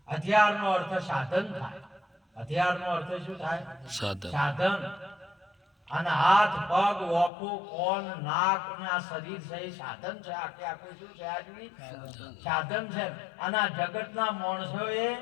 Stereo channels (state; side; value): drops out; right; at 7.3 s